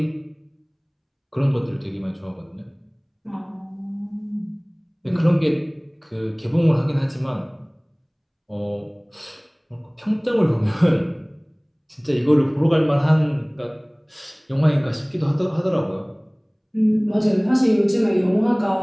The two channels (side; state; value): both; identical; correlation 1.00